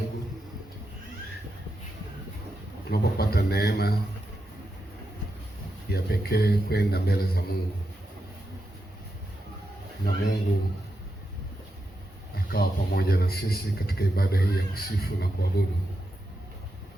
tunapopata neema ya pekee kwenda mbele za Mungu na Mungu akawa pamoja na sisi katika ibada hii ya kusifu na kuabudu.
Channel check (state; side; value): normal; both; correlation 0.86